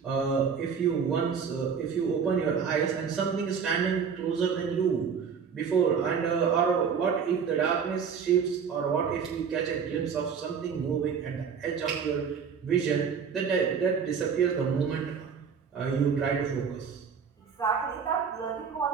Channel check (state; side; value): quieter; left; 6.5 dB